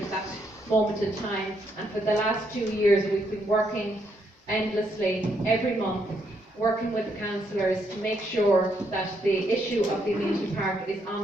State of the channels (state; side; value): normal; both; correlation 0.75